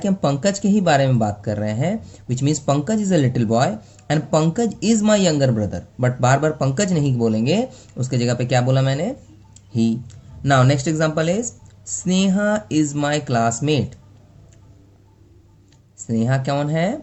हम पंकज के ही बारे में बात कर रहे हैं. Which means Pankaj is a little boy and Pankaj is my younger brother. But बार बार पंकज नहीं बोलेंगे, उसके जगह पे क्या बोला मैंने, he. Now next example is Sneha is my classmate. Sneha कौन है,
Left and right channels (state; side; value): identical; both; correlation 1.00